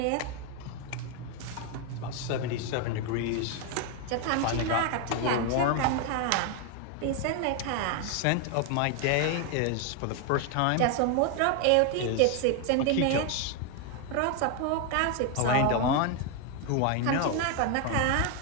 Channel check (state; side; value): different; both; correlation 0.01